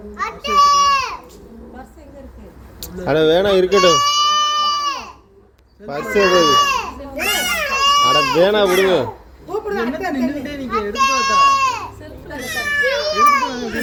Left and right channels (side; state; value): both; identical; correlation 1.00